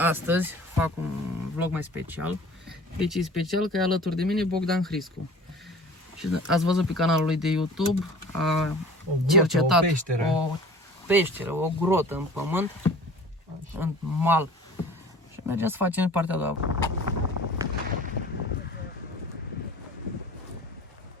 fac un vlog mai special. Deci e special că e alături de mine Bogdan Hriscu. Și ați văzut pe canalul lui de YouTube, a cercetat o peșteră, o grotă în pământ, în mal. Și mergem să facem partea a doua.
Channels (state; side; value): normal; both; correlation 0.45